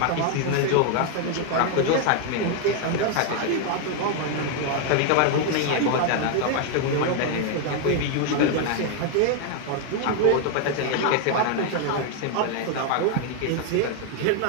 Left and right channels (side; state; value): both; different; correlation 0.01